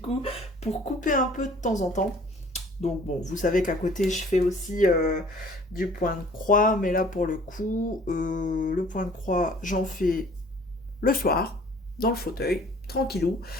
pour couper un peu de temps en temps. Donc bon, vous savez qu'à côté, je fais aussi du point de croix, mais là, pour le coup, le point de croix, j'en fais le soir, dans le fauteuil, tranquillou.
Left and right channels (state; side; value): normal; both; correlation 0.53